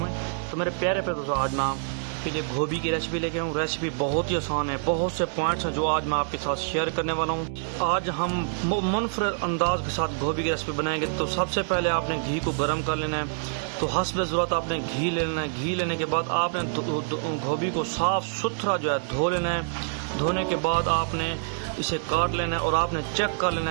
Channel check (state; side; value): silent; left; digital silence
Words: तो मेरे प्यारे प्यारे दोस्तों, आज मैं आपके लिए गोभी की रेसिपी लेके आऊँ। रेसिपी बहुत ही आसान है, बहुत से पॉइंट्स हैं जो आज मैं आपके साथ शेयर करने वाला हूँ। आज हम मुनफरद अंदाज के साथ गोभी की रेसिपी बनाएंगे। तो सबसे पहले आपने घी को गर्म कर लेना है। तो हस्ब ज़रूरत आपने घी ले लेना है। घी लेने के बाद आपने गोभी को साफ़ सुथरा जो है धो लेना है। धोने के बाद आपने इसे काट लेना है और आपने चेक कर लेना